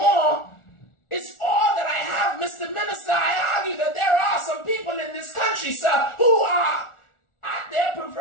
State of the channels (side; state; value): right; late; 1.4 ms